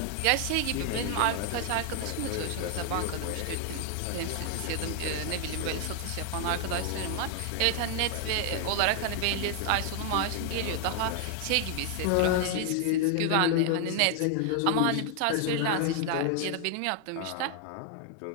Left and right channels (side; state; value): both; different; correlation 0.00